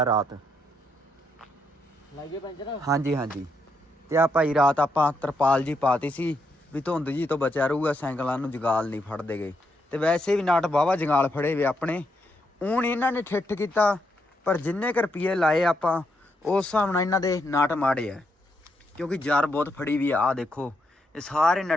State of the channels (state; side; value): normal; both; correlation 0.79